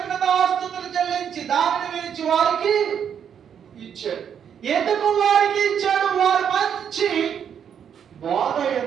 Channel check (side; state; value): left; quieter; 8.2 dB